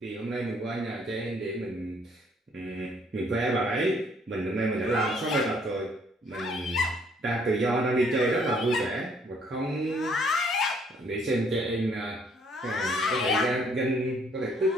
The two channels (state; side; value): normal; both; correlation 0.64